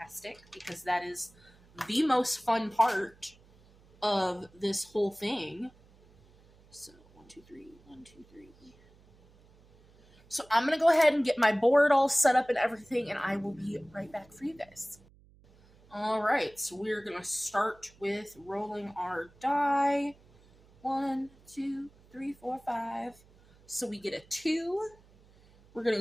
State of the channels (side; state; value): right; noise; hum, 28 dB below the sound